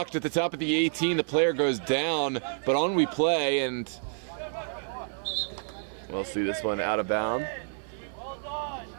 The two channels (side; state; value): left; silent; 59 dB below the other